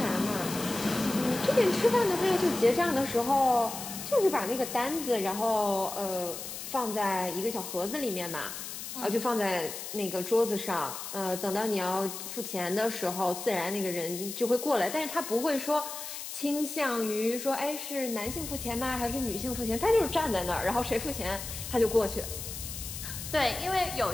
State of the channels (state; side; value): noise; left; hiss, 8 dB below the sound